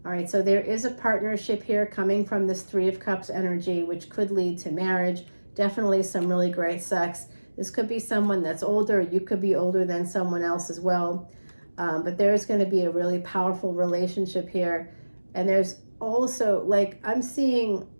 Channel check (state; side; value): inverted; both; correlation -1.00